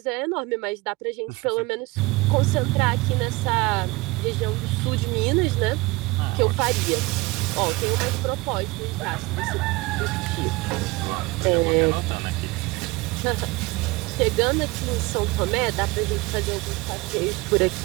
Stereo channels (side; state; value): left; quieter; 23.2 dB